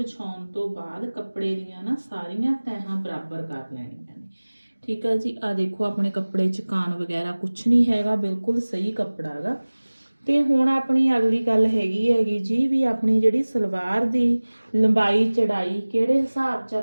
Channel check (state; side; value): inverted; both; correlation -1.00